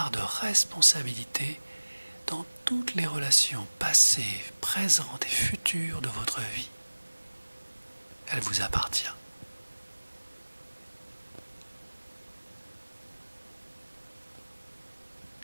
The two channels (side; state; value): both; inverted; correlation -1.00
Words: de responsabilité dans toutes les relations passées, présentes et futures de votre vie. Elle vous appartient.